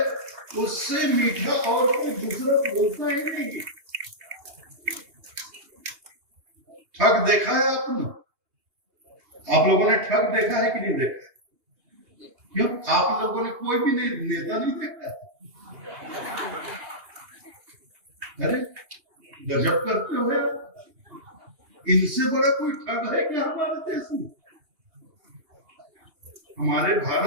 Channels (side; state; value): left; late; 2.8 ms